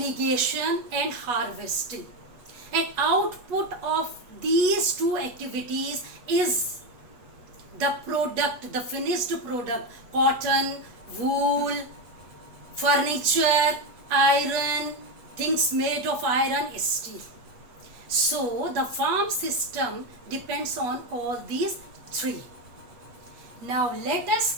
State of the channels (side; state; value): left; late; 8.3 ms